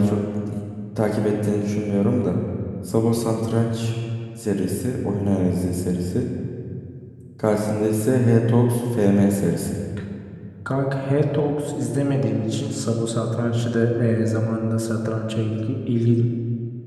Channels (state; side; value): identical; both; correlation 1.00